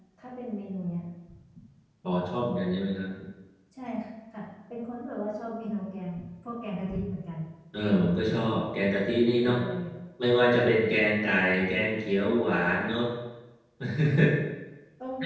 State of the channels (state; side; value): identical; both; correlation 1.00